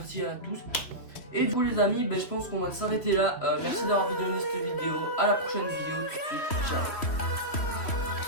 à tous. Et du coup les amis, je pense qu'on va s'arrêter là. Merci d'avoir visionné cette vidéo, à la prochaine vidéo tout de suite, ciao.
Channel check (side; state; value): right; late; 3.1 ms